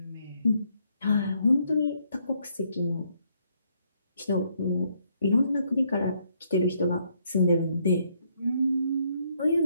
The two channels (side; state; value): both; inverted; correlation -0.72